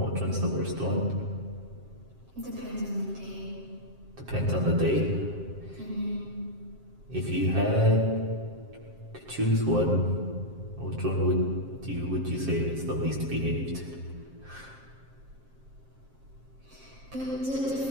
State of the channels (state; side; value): late; left; 7.5 ms